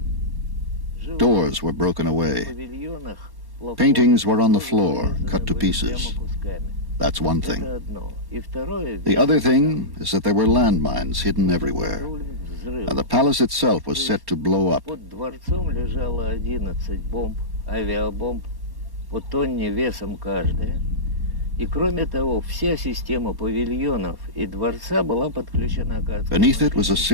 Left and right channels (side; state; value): left; late; 1.1 ms